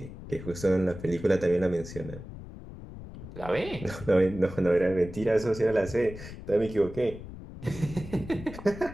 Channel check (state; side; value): noise; left; rumble, 13 dB below the sound